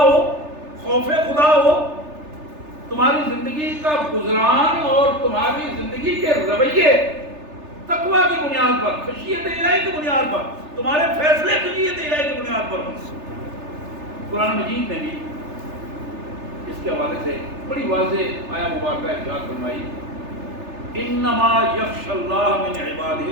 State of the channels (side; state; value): left; late; 3.3 ms